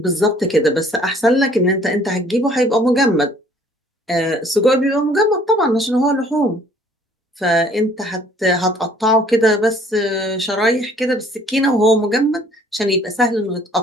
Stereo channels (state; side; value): normal; both; correlation 0.57